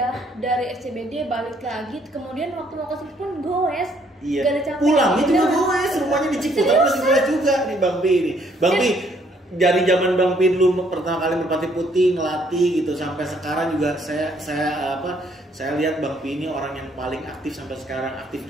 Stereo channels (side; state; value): both; normal; correlation 0.66